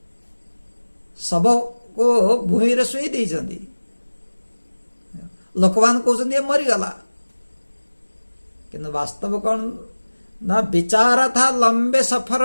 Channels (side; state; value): both; inverted; correlation -1.00